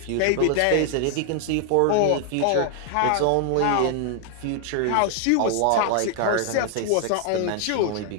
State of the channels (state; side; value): different; both; correlation 0.00